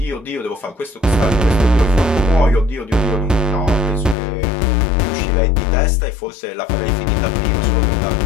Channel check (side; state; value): right; drops out; at 4.2 s